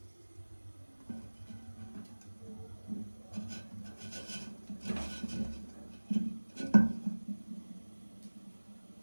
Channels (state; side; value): inverted; both; correlation -1.00